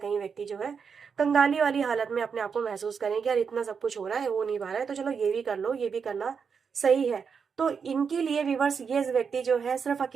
व्यक्ति जो है कंगाली वाली हालत में अपने आप को महसूस करें कि यार इतना सब कुछ हो रहा है, हो नहीं पा रहा है, तो चलो ये भी कर लो, ये भी करना सही है। तो इनके लिए व्यूवर्स ये व्यक्ति जो है सिर्फ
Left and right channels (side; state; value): left; quieter; 6.2 dB